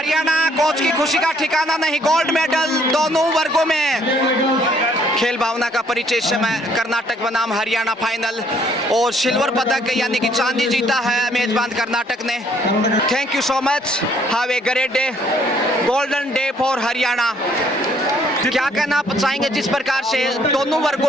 कोच की खुशी का ठिकाना नहीं। गोल्ड मेडल दोनों वर्गों में। खेल भावना का परिचय इस समय कर्नाटक बनाम हरियाणा फाइनल और सिल्वर पदक यानी कि चांदी जीता है मेजबान कर्नाटक ने। Thank you so much. Have a great day, golden day for Haryana. क्या कहना चाहेंगे जिस प्रकार से दोनों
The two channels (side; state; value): both; normal; correlation 0.64